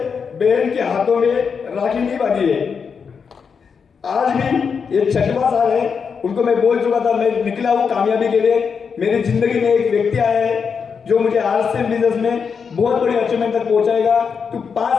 बहन के हाथों में राखी नहीं बांधी है। आज भी ये 6वां साल है, उनको मैं बोल चुका था मैं निकला हूं कामयाबी के लिए। मेरी जिंदगी में एक व्यक्ति आया है जो मुझे आरसीएम बिजनेस में बहुत बड़ी अचीवमेंट तक पहुंचाएगा। तू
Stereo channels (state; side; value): quieter; right; 6.1 dB